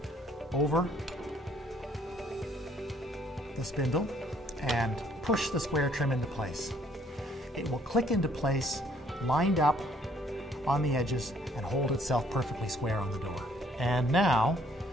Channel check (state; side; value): normal; both; correlation 0.63